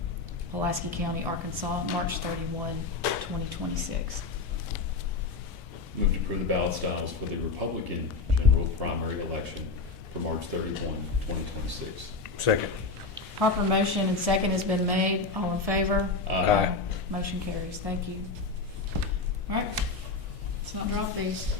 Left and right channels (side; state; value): right; quieter; 4.0 dB